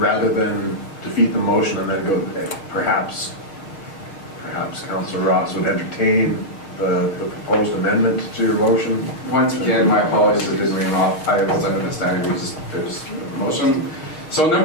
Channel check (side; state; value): right; late; 6.5 ms